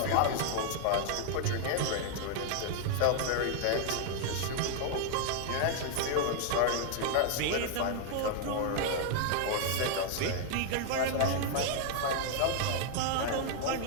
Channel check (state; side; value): different; both; correlation 0.00